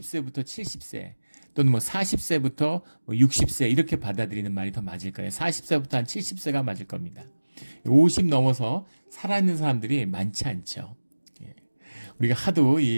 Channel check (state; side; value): inverted; both; correlation -1.00